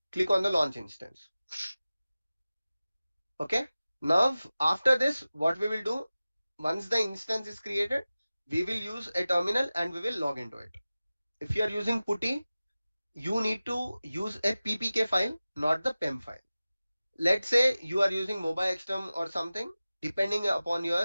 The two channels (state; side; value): inverted; both; correlation -0.96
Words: Click on the launch instance. Okay. Now, after this, what we will do, once the instance is created, we will use a terminal and we will log into it. If you are using putty, you need to use a ppk file, not the pem file. Let's say you are using mobile xterm or something, depending upon